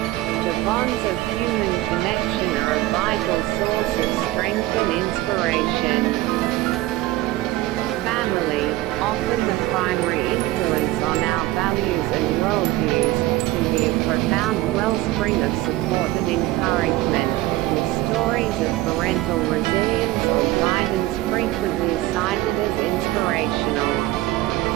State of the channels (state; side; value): quieter; left; 17.3 dB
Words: The bonds of human connection are a vital source of strength and inspiration. Family, often the primary influence on our values and worldviews, can be a profound wellspring of support and encouragement, with stories of parental resilience or guidance frequently cited as inspirational.